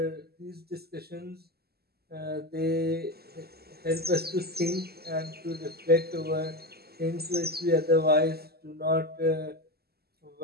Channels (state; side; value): late; left; 0.46 ms